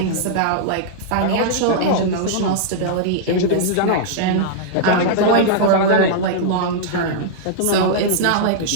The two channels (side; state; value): both; different; correlation -0.02